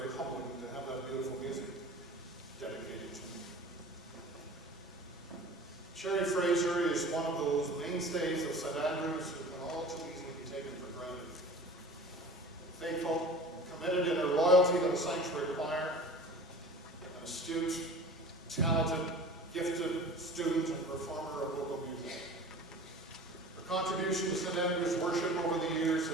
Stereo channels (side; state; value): both; normal; correlation 0.40